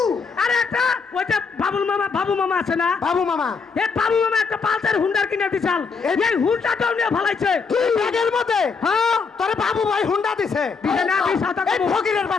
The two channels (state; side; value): quieter; right; 5.1 dB